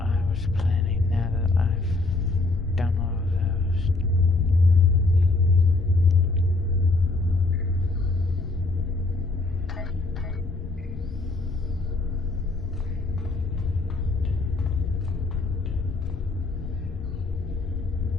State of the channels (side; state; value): right; quieter; 3.3 dB